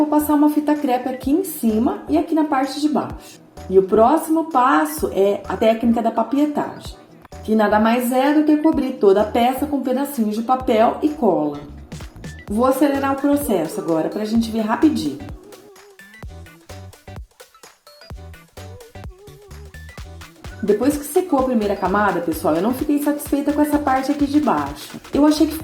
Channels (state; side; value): identical; both; correlation 1.00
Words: passar uma fita crepe aqui em cima e aqui na parte de baixo. E o próximo passo é a técnica da papietagem, que nada mais é do que cobrir toda a peça com pedacinhos de papel e cola. Vou acelerar o processo agora para a gente ver rapidinho. Depois que secou a primeira camada, pessoal, eu não fiquei satisfeita com essa parte aqui de baixo. Eu achei que